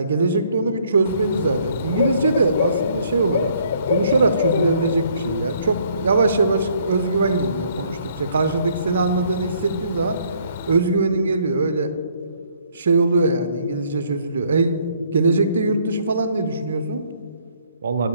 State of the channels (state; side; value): inverted; both; correlation -0.65